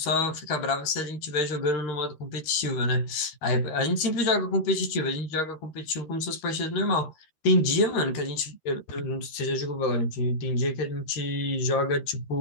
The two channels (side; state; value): right; late; 13 ms